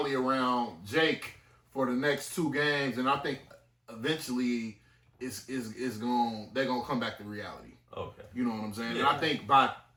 around Jake for the next 2 games, and I think eventually they're going to come back to reality. Okay, you know what I'm saying? Yeah. And I think by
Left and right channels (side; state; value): both; identical; correlation 1.00